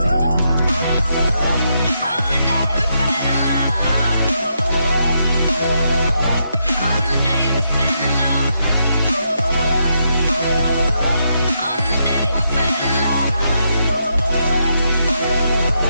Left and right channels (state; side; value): inverted; both; correlation -0.80